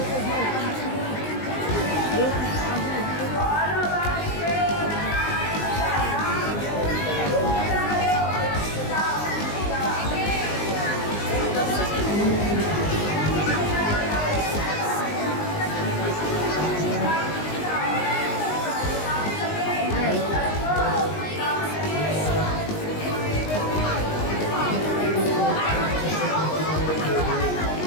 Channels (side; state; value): right; late; 19 ms